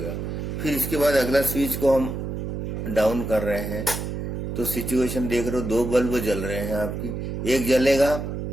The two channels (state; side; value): noise; right; hum, 4 dB below the sound